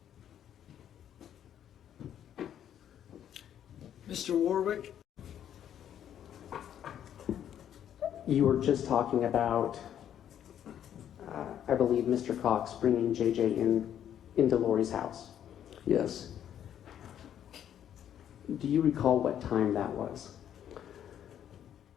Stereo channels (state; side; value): quieter; right; 10.0 dB